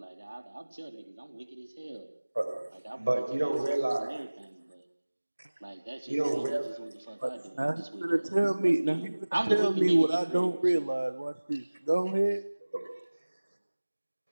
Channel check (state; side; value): inverted; both; correlation -1.00